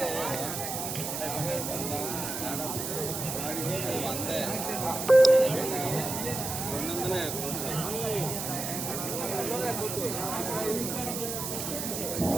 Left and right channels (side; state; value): right; noise; hiss, 4 dB below the sound